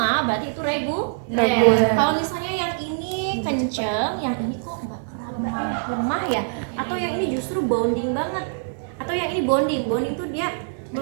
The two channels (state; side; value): silent; left; digital silence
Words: berarti itu reguler. Kalau misalnya yang ini kenceng, yang ini kok enggak lemah ya? Atau yang ini justru bonding banget? Atau yang ini bonding tuh dia